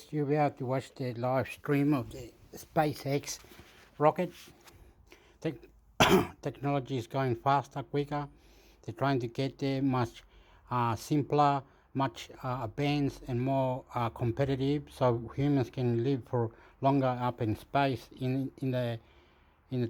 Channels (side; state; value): both; identical; correlation 1.00